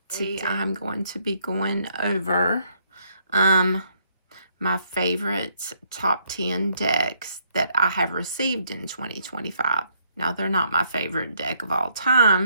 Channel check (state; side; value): inverted; both; correlation -0.69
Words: Today I'm going to be going over my favorite top 10 decks that I have received in 2025. Now, they're not my favorite deck of all